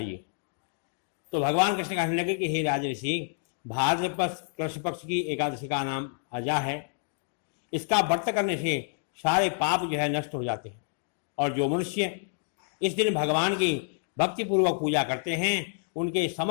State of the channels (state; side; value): silent; right; digital silence